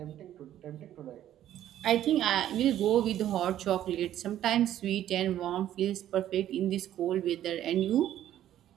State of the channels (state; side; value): quieter; left; 12.0 dB